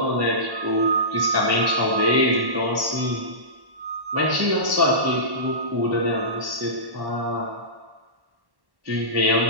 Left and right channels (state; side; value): late; left; 1.1 ms